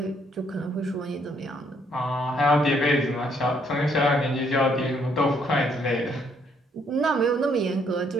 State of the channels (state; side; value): normal; both; correlation 0.69